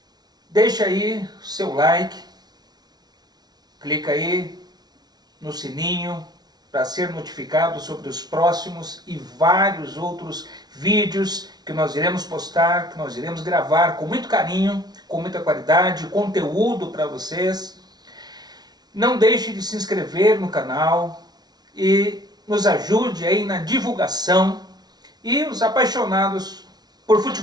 Deixa aí o seu like, clica aí no sininho para ser notificado sobre os próximos e vários outros vídeos que nós iremos postar, que nós iremos gravar com muito carinho, com muita qualidade, conteúdo para vocês. Não deixe de se inscrever no canal e nos ajude aí na divulgação, e os apaixonados por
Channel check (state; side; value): late; left; 0.19 ms